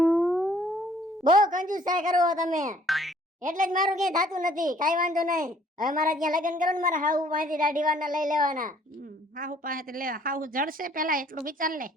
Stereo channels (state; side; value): normal; both; correlation 0.59